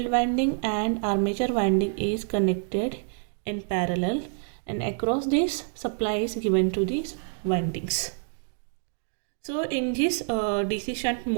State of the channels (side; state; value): left; silent; digital silence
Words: winding and armature winding is connected in parallel, and across this supply is given to these windings. So in this DC shunt